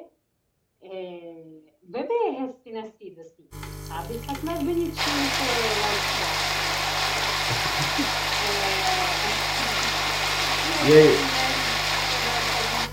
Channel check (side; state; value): both; identical; correlation 1.00